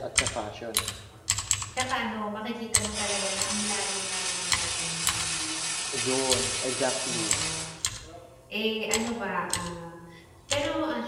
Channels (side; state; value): both; identical; correlation 1.00